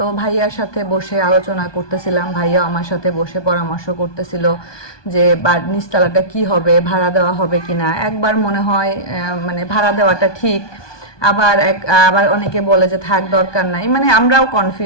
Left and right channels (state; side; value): late; right; 1.2 ms